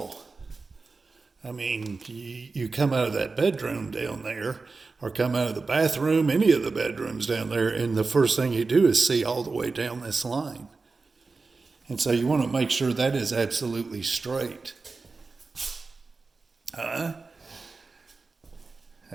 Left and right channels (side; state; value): left; quieter; 4.1 dB